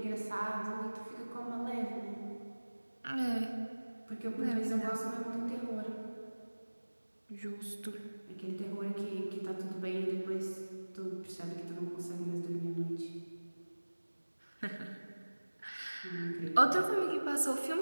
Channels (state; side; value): inverted; both; correlation -1.00